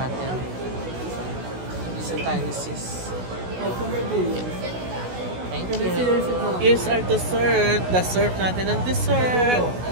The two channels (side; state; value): left; late; 16 ms